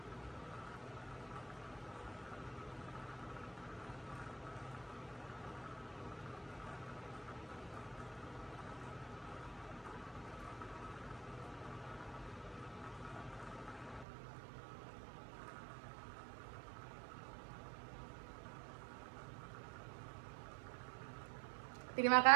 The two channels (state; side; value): drops out; left; at 14.1 s